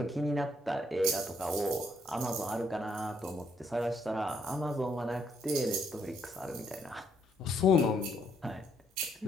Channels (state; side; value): normal; both; correlation 0.72